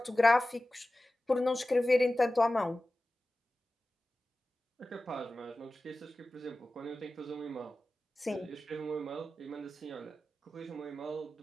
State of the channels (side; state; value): both; normal; correlation 0.95